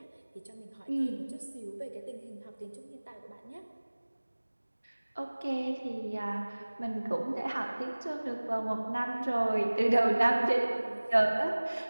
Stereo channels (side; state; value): both; inverted; correlation -1.00